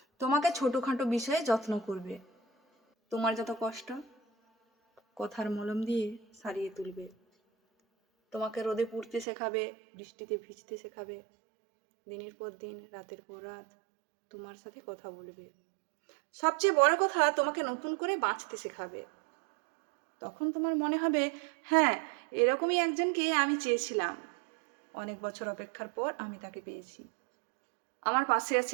তোমাকে ছোটোখাটো বিষয়ে যত্ন করবে, তোমার যত কষ্ট কথার মলম দিয়ে সারিয়ে তুলবে, তোমাকে রোদে পুড়তে শেখাবে, বৃষ্টিতে ভিজতে শেখাবে, দিনের পর দিন রাতের পর রাত তোমার সাথে কথা বলবে, সবচেয়ে বড় কথা তোমাকে নতুন করে বাঁচতে শেখাবে। তখন তোমার মনে হবে, হ্যাঁ, এরকমই একজনকে আমি চেয়েছিলাম, অনেক বছর অপেক্ষার পর আমি তাকে পেয়েছি, আমার পাশে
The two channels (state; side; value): drops out; left; at 9.2 s